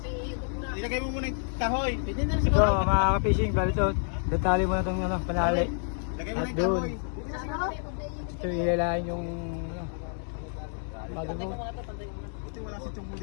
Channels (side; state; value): right; silent; 59 dB below the other